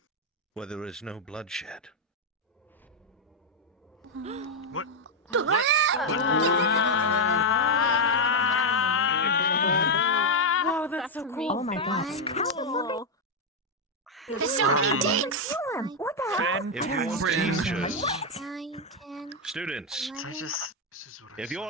where there is no bloodshed. What? Oh, that's so cool. Oh my gosh. Cool. There's so many dicks. What the hell? If your teachers, What? students, if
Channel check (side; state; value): both; normal; correlation 0.02